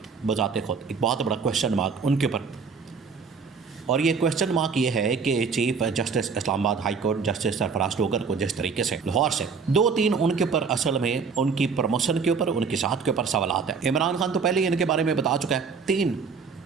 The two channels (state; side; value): quieter; left; 5.4 dB